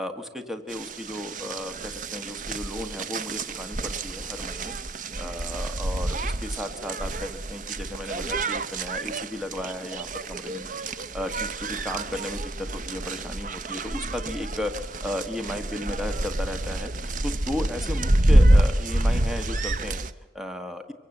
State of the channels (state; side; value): normal; both; correlation 0.83